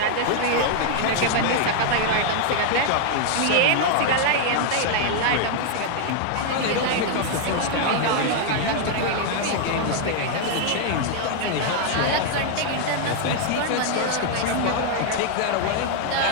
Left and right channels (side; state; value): both; different; correlation 0.00